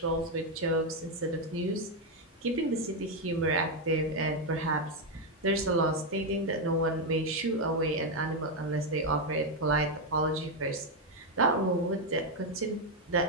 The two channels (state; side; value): normal; both; correlation 0.04